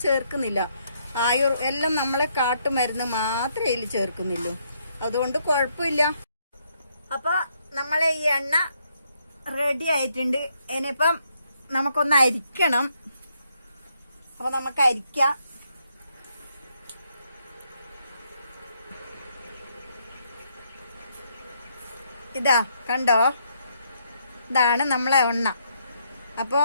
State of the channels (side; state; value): both; inverted; correlation -0.74